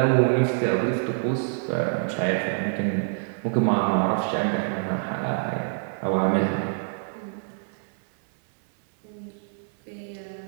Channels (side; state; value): left; silent; 61 dB below the other